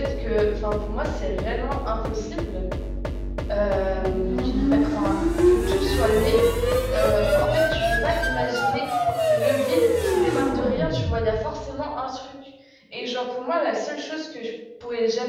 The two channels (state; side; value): identical; both; correlation 1.00